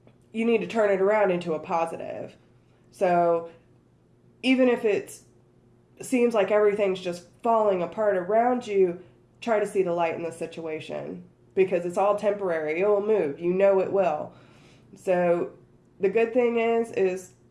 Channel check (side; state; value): both; identical; correlation 1.00